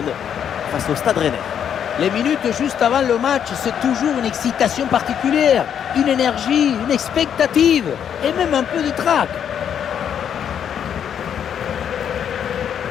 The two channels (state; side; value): quieter; right; 8.6 dB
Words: face au Stade Rennais. Les minutes juste avant le match, c'est toujours une excitation particulière, une énergie, une expectative et même un peu de trac.